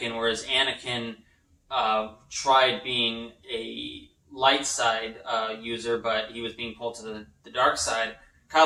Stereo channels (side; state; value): both; identical; correlation 1.00